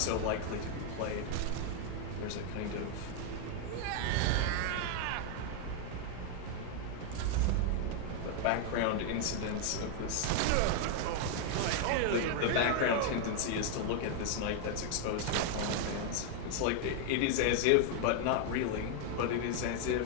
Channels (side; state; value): both; different; correlation 0.00